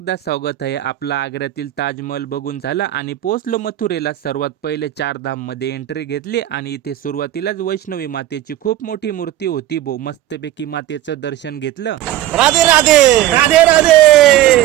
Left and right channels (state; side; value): quieter; left; 13.6 dB